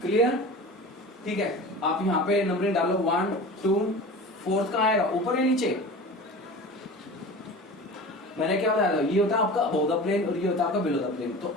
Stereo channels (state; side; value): normal; both; correlation 0.35